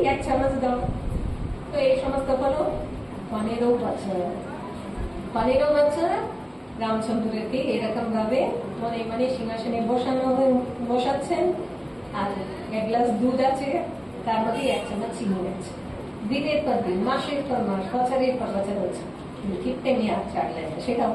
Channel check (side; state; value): both; identical; correlation 1.00